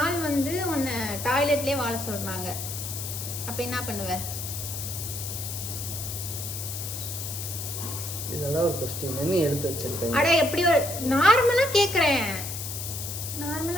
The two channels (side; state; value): left; noise; hiss, 6 dB below the sound